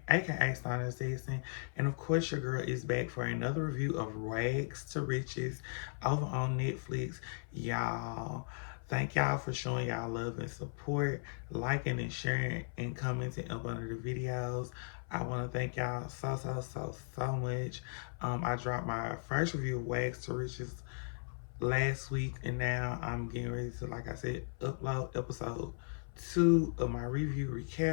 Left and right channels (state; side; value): silent; right; 53 dB below the other